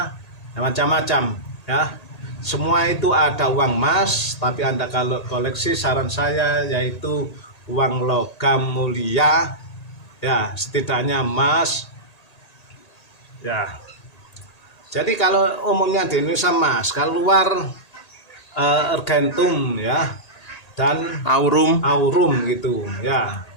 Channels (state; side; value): late; right; 1.8 ms